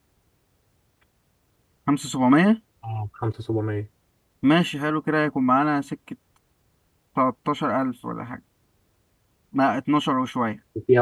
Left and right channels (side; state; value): both; identical; correlation 1.00